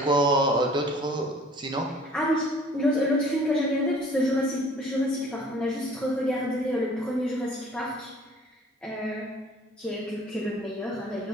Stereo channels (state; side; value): normal; both; correlation 0.52